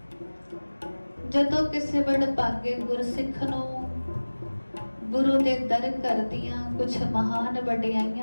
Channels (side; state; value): both; inverted; correlation -1.00